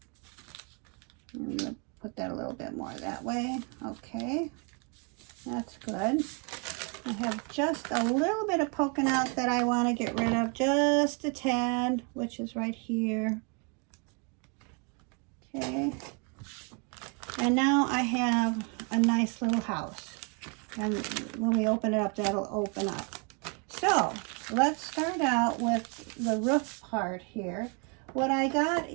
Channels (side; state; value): left; quieter; 35.2 dB